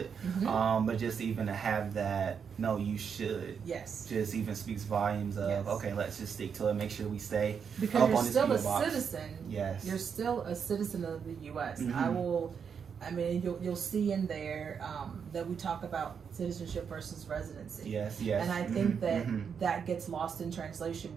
but just even to have that, no, you should. Yes. Just even speaks volumes of, okay, let's just stick to it. Make sure we stay because up you're on this still a box. citizen. Yes. You're still a citizen of the U.S. I mean, you'll see in there that we talk about citizenship versus residency. Yes. And I think that gets lost in translation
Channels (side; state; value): left; quieter; 6.8 dB